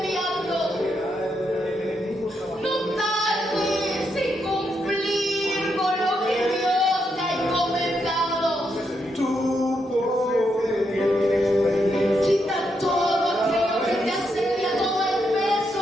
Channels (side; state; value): both; normal; correlation 0.81